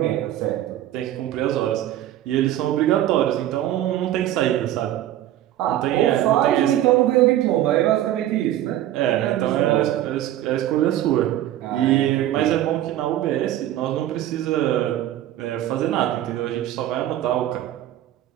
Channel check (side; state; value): left; quieter; 13.0 dB